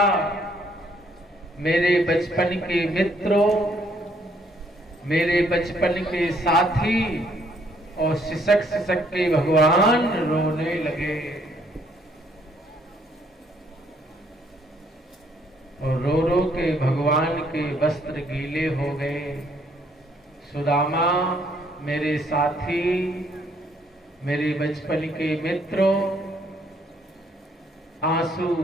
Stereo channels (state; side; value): normal; both; correlation 0.67